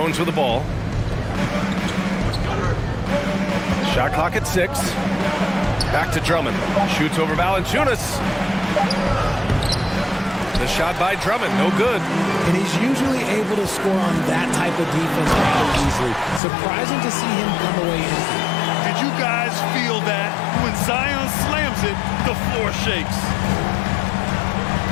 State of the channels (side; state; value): right; drops out; at 16.4 s